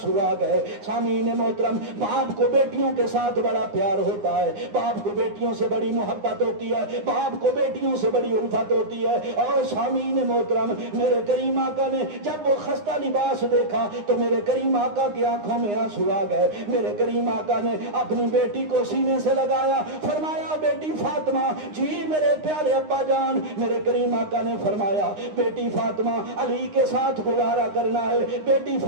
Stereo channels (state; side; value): late; left; 9.7 ms